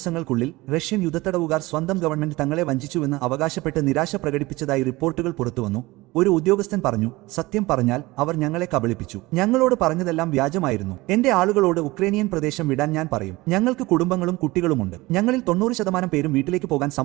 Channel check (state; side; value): quieter; left; 20.7 dB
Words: റഷ്യൻ യുദ്ധത്തടവുകാർ സ്വന്തം ഗവൺമെന്റ് തങ്ങളെ വഞ്ചിച്ചുവെന്ന് അവകാശപ്പെട്ട് നിരാശ പ്രകടിപ്പിച്ചതായി റിപ്പോർട്ടുകൾ പുറത്തുവന്നു. ഒരു ഉദ്യോഗസ്ഥൻ പറഞ്ഞു, സത്യം പറഞ്ഞാൽ അവർ ഞങ്ങളെ കബളിപ്പിച്ചു. ഞങ്ങളോട് പറഞ്ഞതെല്ലാം വ്യാജമായിരുന്നു. എന്റെ ആളുകളോട് ഉക്രൈനിയൻ പ്രദേശം വിടാൻ ഞാൻ പറയും. ഞങ്ങൾക്ക് കുടുംബങ്ങളും കുട്ടികളുമുണ്ട്. ഞങ്ങളിൽ 90% പേരും വീട്ടിലേക്ക് പോകാൻ